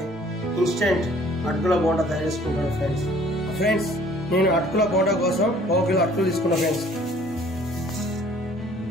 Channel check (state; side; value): normal; both; correlation 0.55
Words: ఇన్స్టెంట్ అటుకుల బోండా తయారు చేసుకుంటాను ఫ్రెండ్స్. నేను అటుకుల బోండా కోసం 1 కిలో అటుకులు తీసుకున్నా ఫ్రెండ్స్.